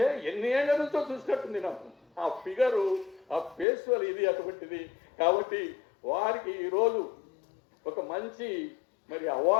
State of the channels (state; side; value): drops out; right; at 3.7 s